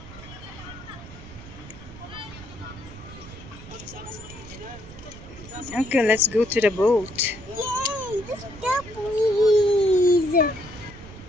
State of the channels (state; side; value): noise; right; rumble, 16 dB below the sound